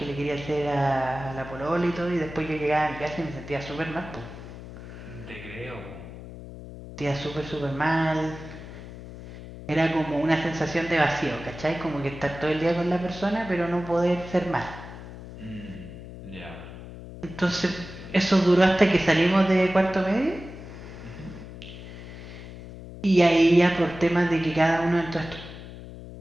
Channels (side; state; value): left; noise; hum, 13 dB below the sound